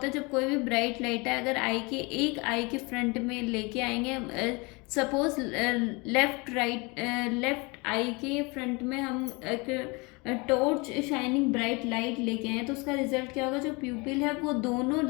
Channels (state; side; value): quieter; right; 27.5 dB